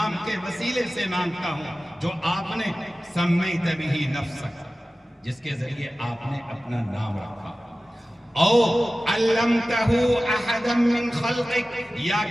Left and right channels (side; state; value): both; normal; correlation 0.96